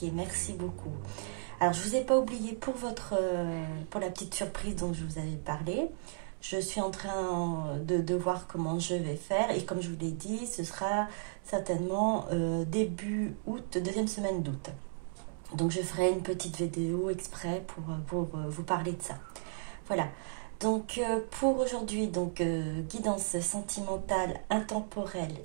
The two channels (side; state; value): left; silent; digital silence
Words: Merci beaucoup. Alors, je ne vous ai pas oublié pour pour la petite surprise dont je vous avais parlé. Je suis en train de voir comment je vais faire. Et comme je vous l'ai dit, ce sera certainement début août, deuxième semaine d'août. Donc, je ferai une petite vidéo exprès pour vous parler de ça. Voilà. Donc, pour aujourd'hui, guidance sentimentale, intemporelle,